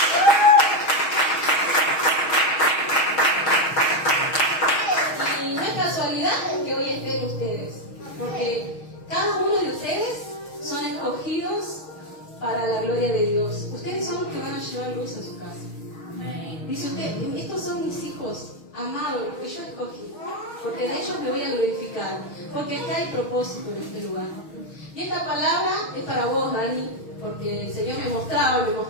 Y no es casualidad que hoy estén ustedes, porque cada uno de ustedes son escogidos para la gloria de Dios. Ustedes son los que van a llevar luz a su casa. Dice usted, estos son mis hijos amados, los que yo escogí, porque de ellos me voy a glorificar, porque acá hay propósito en este lugar. Y esta palabra es para vos, Dani, porque el Señor me mostraba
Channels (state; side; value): late; right; 6.3 ms